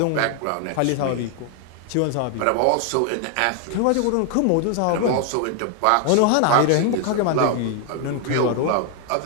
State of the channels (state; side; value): different; both; correlation 0.00